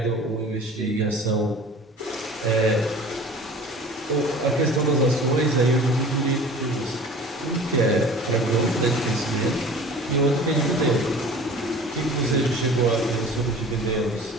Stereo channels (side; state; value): both; normal; correlation 0.42